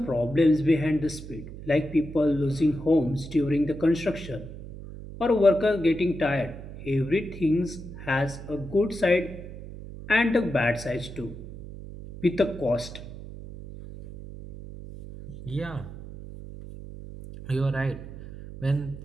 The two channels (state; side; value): noise; right; hum, 12 dB below the sound